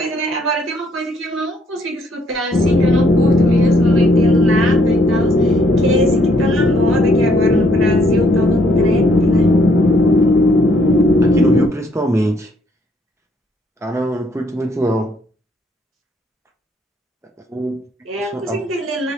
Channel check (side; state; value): both; normal; correlation 0.68